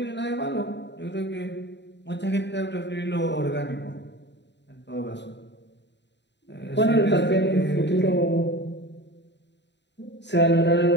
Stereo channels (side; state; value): right; late; 0.51 ms